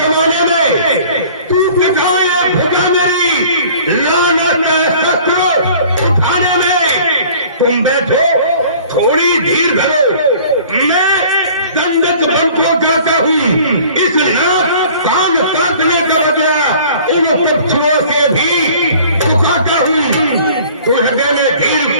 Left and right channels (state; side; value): inverted; both; correlation -0.49